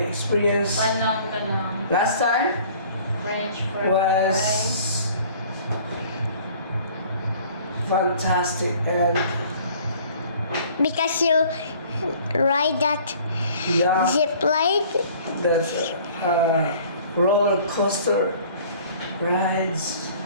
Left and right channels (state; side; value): inverted; both; correlation -0.52